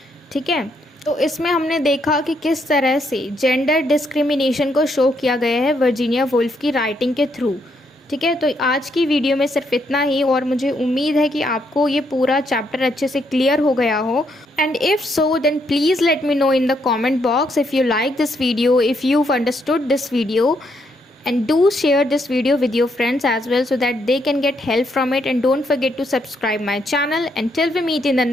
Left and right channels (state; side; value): normal; both; correlation 0.75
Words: ठीक है। तो इसमें हमने देखा कि किस तरह से जेंडर डिस्क्रिमिनेशन को शो किया गया है वर्जीनिया वुल्फ की राइटिंग के थ्रू, ठीक है। तो आज की वीडियो में सिर्फ इतना ही, और मुझे उम्मीद है कि आपको ये पूरा चैप्टर अच्छे से क्लियर हो गया हो। And if so then please let me know in the comment box if you like this video, if you understood this video, and do share this video with your friends as well so that they can get help from it. And don't forget to subscribe my channel. Until we meet in the